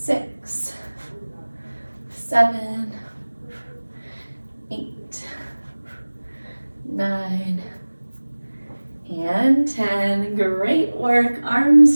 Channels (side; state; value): both; inverted; correlation -1.00